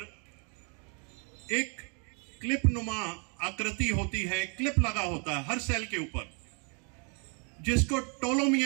एक क्लिप नुमा आकृति होती है, क्लिप लगा होता है हर सेल के ऊपर, जिसको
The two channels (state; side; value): quieter; left; 37.9 dB